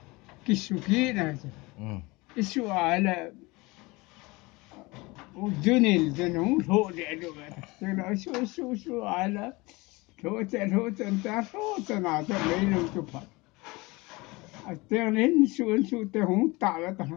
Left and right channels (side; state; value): right; quieter; 23.6 dB